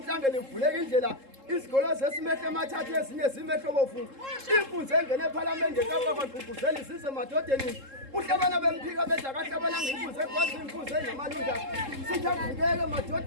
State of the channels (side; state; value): left; late; 3.7 ms